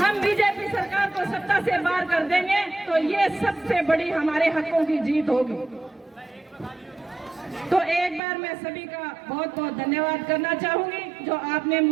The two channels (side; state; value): left; drops out; at 8.2 s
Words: बीजेपी सरकार को सत्ता से बाहर कर देंगे तो ये सबसे बड़ी हमारे हकों की जीत होगी। तो एक बार मैं सभी का बहुत बहुत धन्यवाद करना चाहूंगी जो आपने